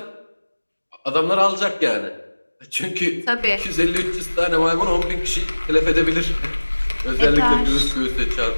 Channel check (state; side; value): inverted; both; correlation -1.00